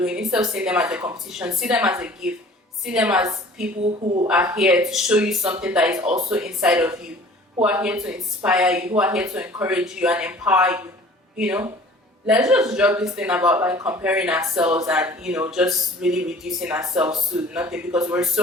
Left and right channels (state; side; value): normal; both; correlation 0.47